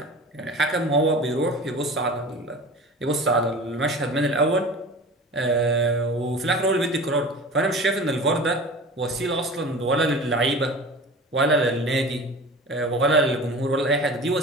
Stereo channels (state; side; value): normal; both; correlation 0.36